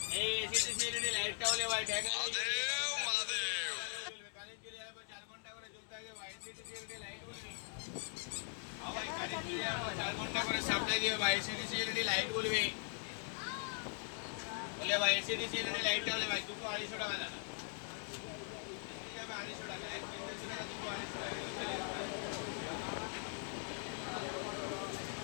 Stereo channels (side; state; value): right; silent; 51 dB below the other